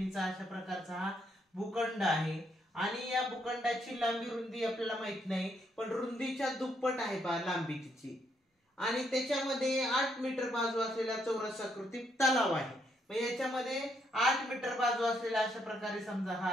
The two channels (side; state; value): both; normal; correlation 0.75